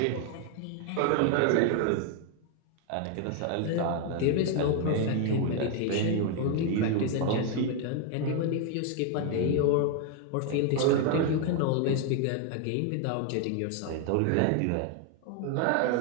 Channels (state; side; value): different; both; correlation 0.01